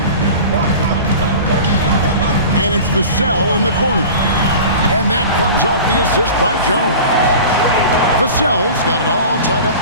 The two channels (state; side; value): inverted; both; correlation -0.37